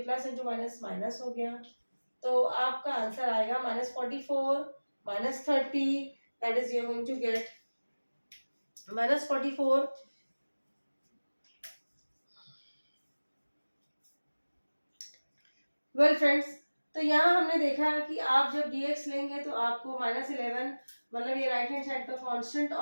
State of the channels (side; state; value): both; inverted; correlation -1.00